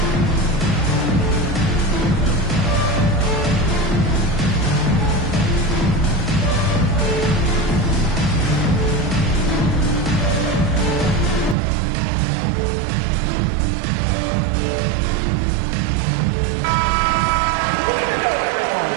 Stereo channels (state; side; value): drops out; left; at 11.6 s